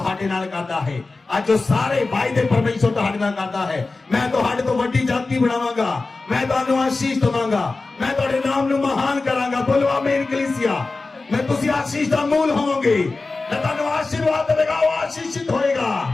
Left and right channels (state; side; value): quieter; right; 3.6 dB